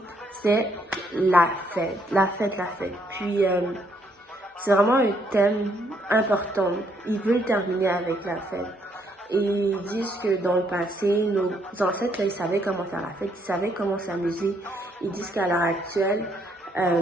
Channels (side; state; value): both; normal; correlation 0.71